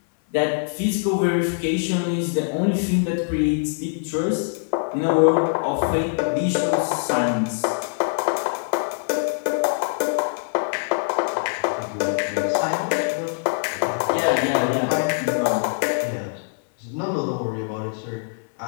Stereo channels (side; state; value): right; silent; 63 dB below the other